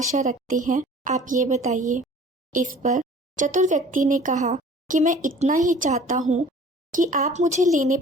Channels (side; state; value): both; normal; correlation 0.48